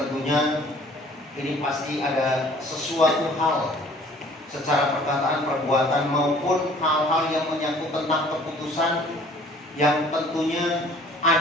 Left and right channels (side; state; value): both; normal; correlation 0.53